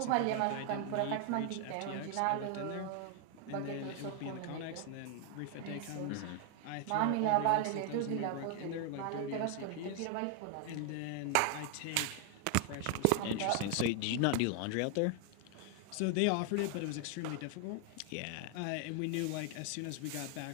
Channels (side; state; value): both; different; correlation 0.00